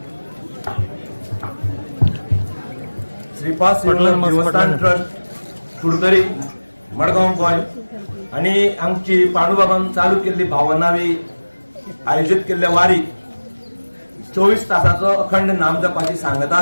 श्रीपाद श्रीवल्लभ देवस्थान ट्रस्ट कुडतरी मडगांव गोय आणि आमची पांडुबाबान चालू केल्ली भावनावी आयोजित केल्ल्या वारी 24 तासाचो अखंड नाम जपाची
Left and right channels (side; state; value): both; inverted; correlation -1.00